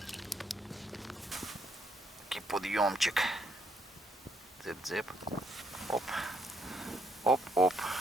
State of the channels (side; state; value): both; normal; correlation 0.72